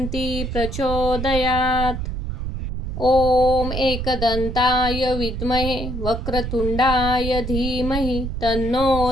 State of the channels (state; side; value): noise; right; rumble, 4 dB below the sound